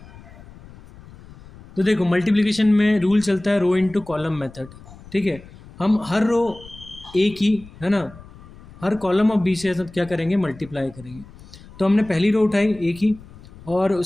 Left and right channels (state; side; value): noise; left; rumble, 20 dB below the sound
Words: तो देखो मल्टीप्लिकेशन में रूल चलता है रो इंटू कॉलम मेथड। ठीक है, हम हर रो ए की, है ना, हर कॉलम ऑफ बी से क्या करेंगे, मल्टीप्लाई करेंगे। तो हमने पहली रो उठाई ए की और